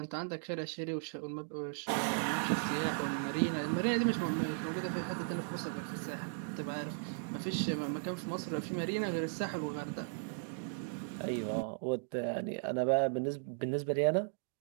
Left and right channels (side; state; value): left; silent; digital silence